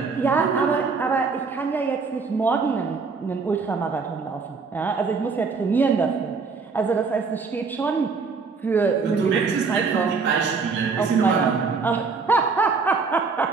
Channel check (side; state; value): left; quieter; 4.8 dB